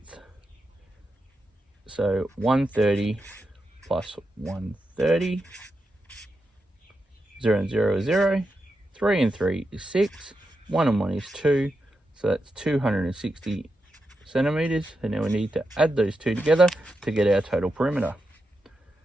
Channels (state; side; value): normal; both; correlation 0.87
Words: So 130 plus 130. 0 and 0 is 0. 3 and 3 is 6. 1 and 1 is 2. So that's 260 centimetres. And now we need to add those two together to get our total perimeter.